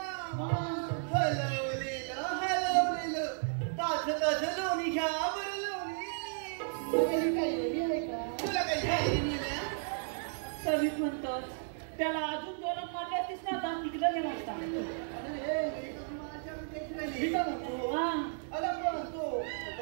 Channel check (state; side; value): silent; left; 55 dB below the other